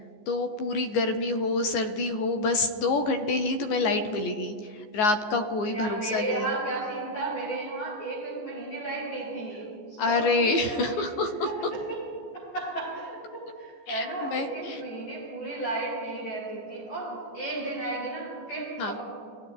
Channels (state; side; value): late; right; 14 ms